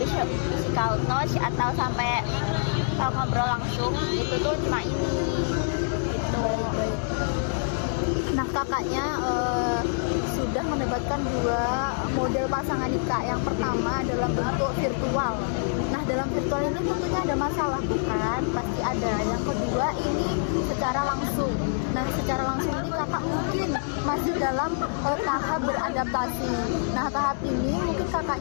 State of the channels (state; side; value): silent; right; digital silence